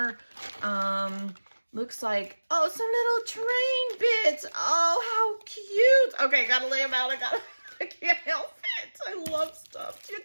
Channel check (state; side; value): inverted; both; correlation -1.00